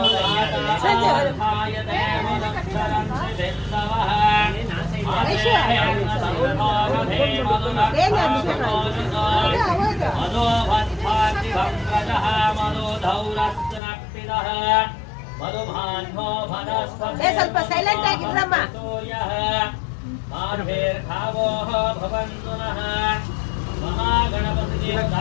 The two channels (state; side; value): drops out; right; at 13.8 s